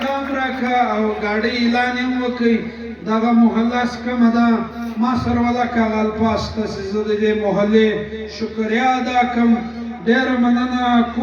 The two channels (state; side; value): identical; both; correlation 1.00